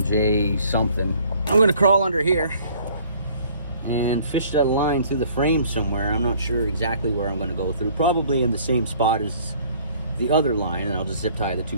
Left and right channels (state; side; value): inverted; both; correlation -0.56